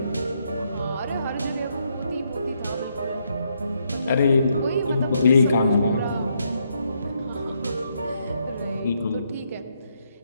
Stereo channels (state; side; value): inverted; both; correlation -0.76